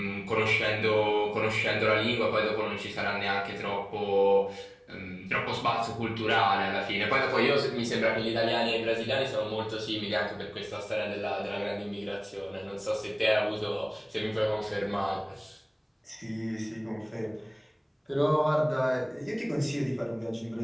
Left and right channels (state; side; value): identical; both; correlation 1.00